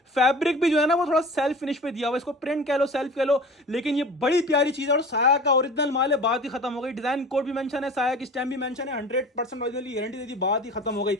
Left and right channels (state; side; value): normal; both; correlation 0.39